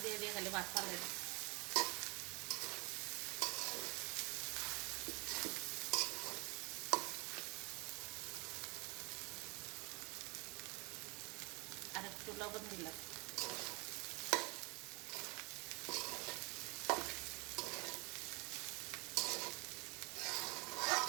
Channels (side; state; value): left; quieter; 28.6 dB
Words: দিয়ে দিয়ে খালি ভাত ফালে দিই। আর একটু লবণ দিলাম।